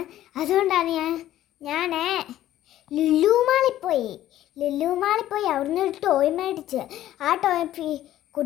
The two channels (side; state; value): right; quieter; 13.2 dB